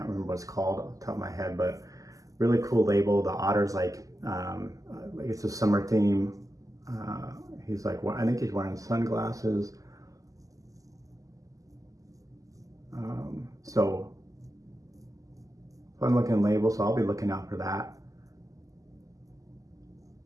remember what it's called off the top of my head, but really cool label. The Otter's like it's a summer theme. He's like, I think he's wearing sunglasses. So fun looking label, so I'll be looking out for that.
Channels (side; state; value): left; late; 0.17 ms